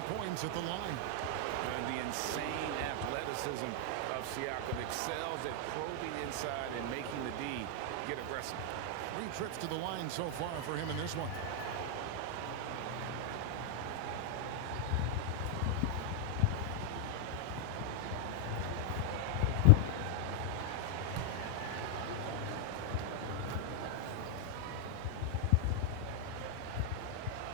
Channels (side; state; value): both; different; correlation 0.00